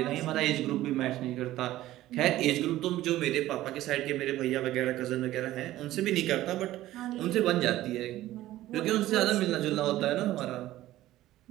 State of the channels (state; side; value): quieter; left; 15.2 dB